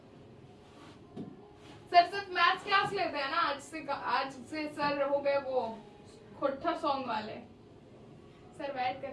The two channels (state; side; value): identical; both; correlation 1.00